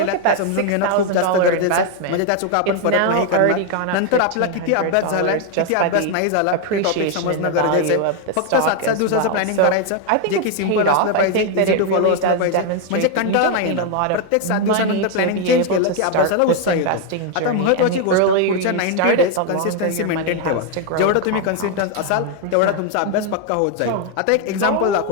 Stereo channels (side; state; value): both; different; correlation 0.01